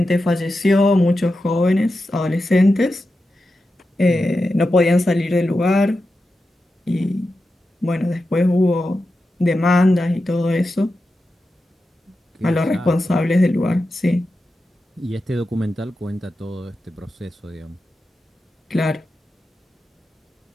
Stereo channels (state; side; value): normal; both; correlation 0.91